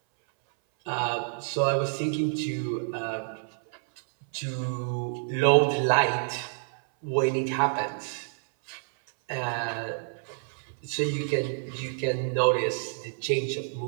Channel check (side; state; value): left; silent; 59 dB below the other